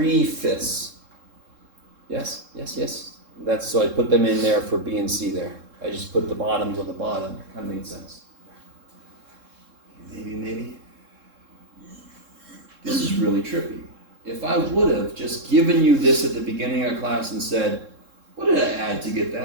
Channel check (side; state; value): left; late; 3.7 ms